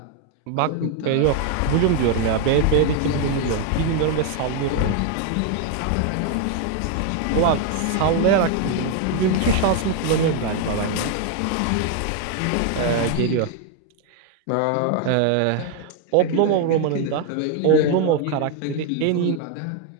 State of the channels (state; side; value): different; both; correlation 0.01